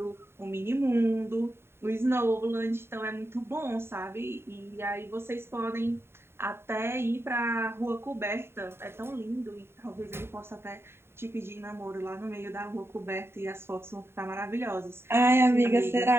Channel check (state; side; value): late; left; 0.12 ms